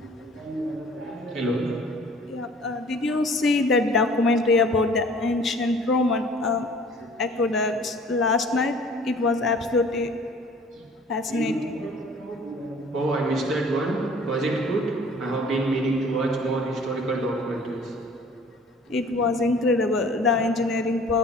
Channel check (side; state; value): both; normal; correlation 0.50